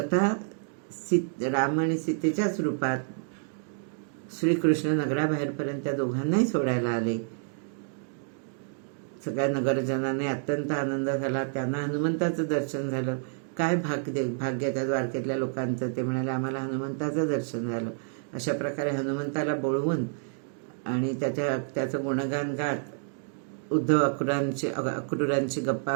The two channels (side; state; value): left; silent; digital silence